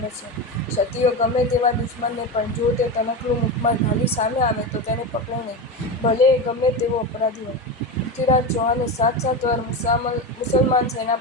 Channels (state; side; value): normal; both; correlation 0.19